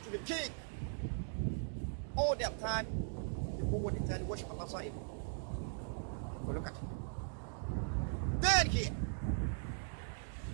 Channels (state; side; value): silent; left; digital silence